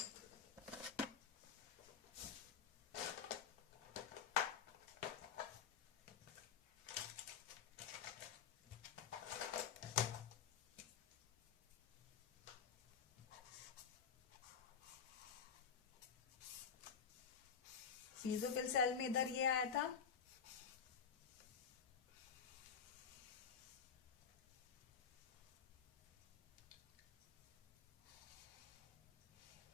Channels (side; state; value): right; quieter; 6.9 dB